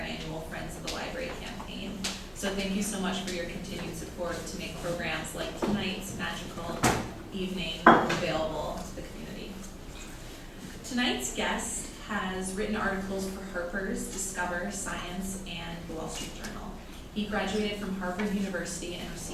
Friends of the Library campaign. So thank you so much for your continued support to make programs like tonight's magical evening available to the community. Tonight's guest has written articles for Harper's, Discover, Science, and the Wall Street Journal. He graduated from Harvard University and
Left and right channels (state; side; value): identical; both; correlation 1.00